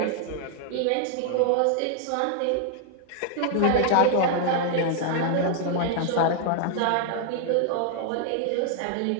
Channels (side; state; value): both; different; correlation 0.00